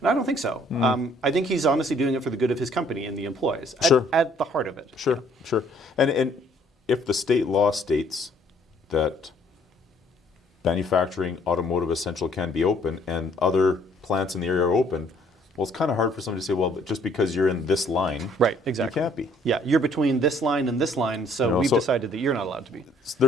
I don't think so. I think he's honestly doing it for the good of his company and the employees at the heart of it. Sure. And if the state law states that manufacturing, automotive essential can be open, and other plants in the area are open, well, it's kind of hard for somebody to say, well, just because you're in this line, right, exactly. you can't be. Yeah, you're between this line and this line, so we've decided that you're not allowed to be.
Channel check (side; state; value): both; normal; correlation 0.62